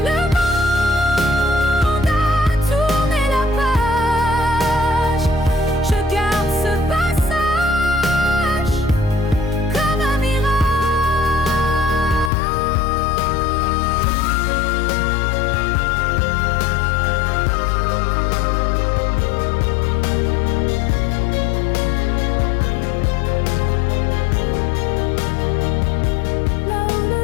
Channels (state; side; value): drops out; right; at 12.3 s